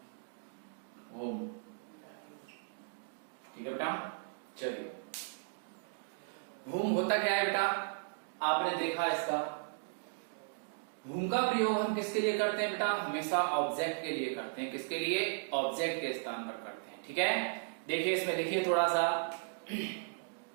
हुम। ठीक है बेटा, चलिए। हुम होता क्या है बेटा, आपने देखा इसका। हुम का प्रयोग हम किसके लिए करते हैं बेटा? हमेशा ऑब्जेक्ट के लिए करते हैं। किसके लिए? ऑब्जेक्ट के स्थान पर करते हैं। ठीक है, देखिए इसमें लिखिए थोड़ा सा।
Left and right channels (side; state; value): left; silent; digital silence